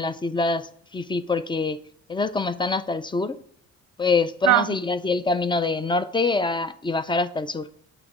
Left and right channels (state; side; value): normal; both; correlation 0.44